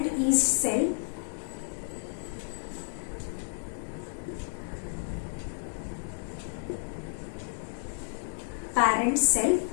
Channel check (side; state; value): right; silent; digital silence